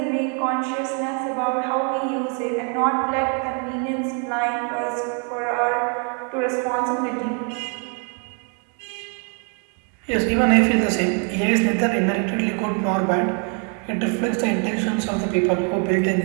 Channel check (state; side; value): quieter; left; 39.7 dB